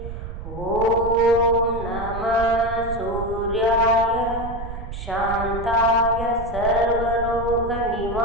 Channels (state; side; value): noise; right; rumble, 9 dB below the sound